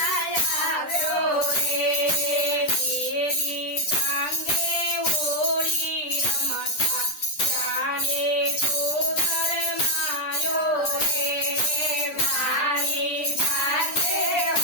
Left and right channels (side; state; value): right; late; 10 ms